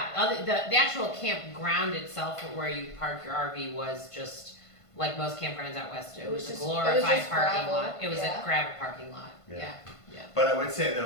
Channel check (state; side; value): late; right; 1.5 ms